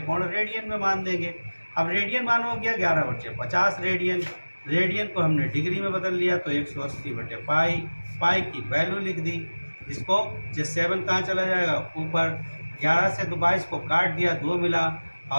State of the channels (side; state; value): both; inverted; correlation -1.00